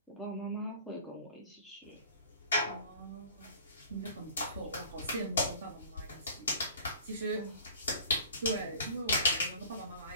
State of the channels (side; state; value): both; inverted; correlation -0.46